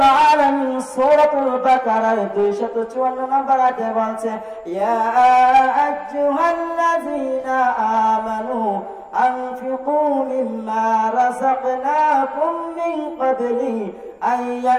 আলামিন সূরাতুল বাকারার 254 নম্বর আয়াতে বলছে ইয়া আইয়ুহাল্লাযীনা আমানু আনফিকু মিম্মা রাযাকনাকুম মিন ক্বাবলি আন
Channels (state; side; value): identical; both; correlation 1.00